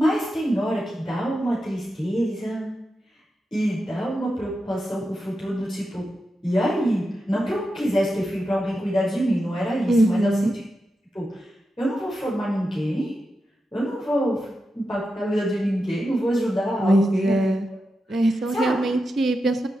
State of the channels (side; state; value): both; normal; correlation 0.89